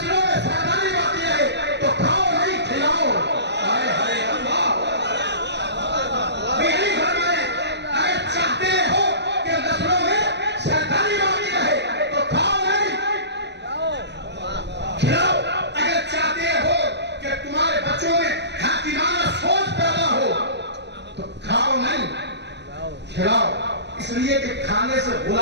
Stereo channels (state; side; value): late; left; 0.50 ms